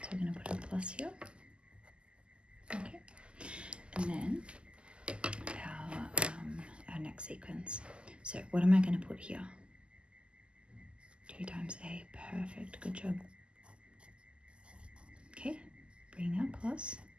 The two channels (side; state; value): left; late; 0.051 ms